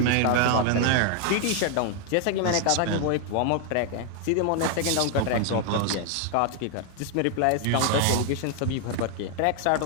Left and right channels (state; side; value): different; both; correlation 0.00